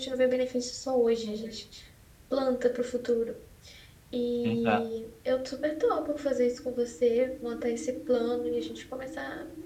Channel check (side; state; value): both; identical; correlation 1.00